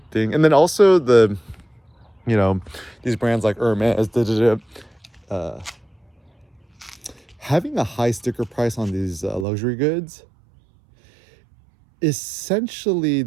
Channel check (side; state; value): left; drops out; at 9.5 s